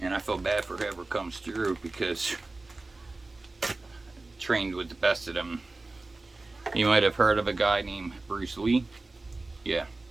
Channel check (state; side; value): quieter; left; 3.2 dB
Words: And I feel bad for whoever comes through because I trained with the best of them. You might have heard of a guy named Bruce Lee. Yeah,